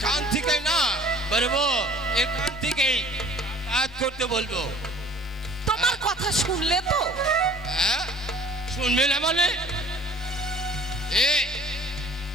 থেকে না বলবো, এখান থেকেই কাজ করতে বলবো। তোমার কথা শুনলে তো? শুনবে না মানে?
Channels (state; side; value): normal; both; correlation 0.50